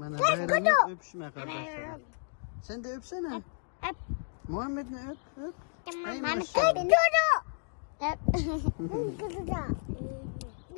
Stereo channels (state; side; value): silent; right; 57 dB below the other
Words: bayramlık öpüşme kardeşlerim. Sen de öpsene. Öp. Muhammed ne öp öp. Ay Ben maşallah. öp. Öp. Kızı da.